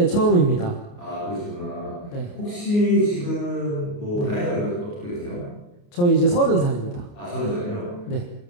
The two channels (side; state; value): right; late; 28 ms